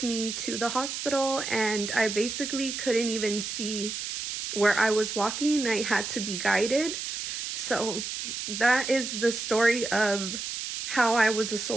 me to the hospital, and I basically couldn't even see where I was walking. I had to be guided. So that is the story of how I was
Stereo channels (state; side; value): noise; right; hiss, 5 dB below the sound